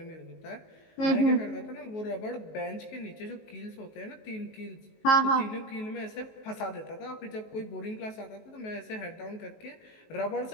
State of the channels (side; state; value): right; late; 19 ms